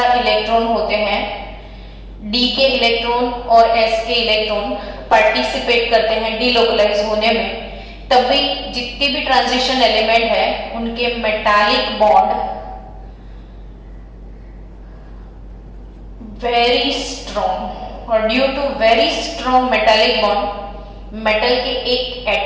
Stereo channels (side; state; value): both; identical; correlation 1.00